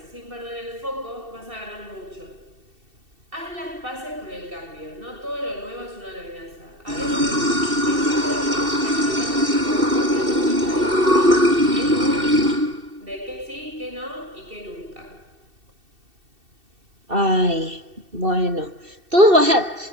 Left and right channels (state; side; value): late; left; 2.7 ms